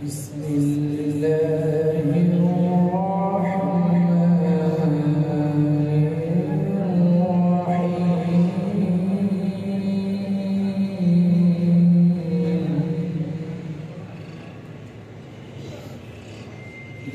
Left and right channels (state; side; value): identical; both; correlation 1.00